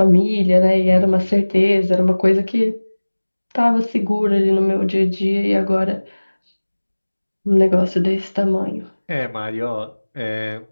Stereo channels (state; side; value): inverted; both; correlation -1.00